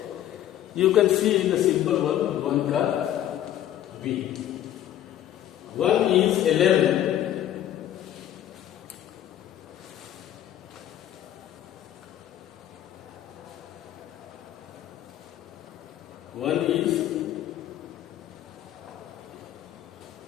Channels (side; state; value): right; quieter; 11.9 dB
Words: you can see the simple one ka B. 1 is 11. One